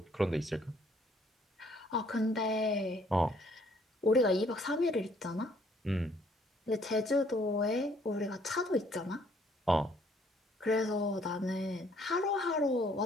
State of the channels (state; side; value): normal; both; correlation 0.64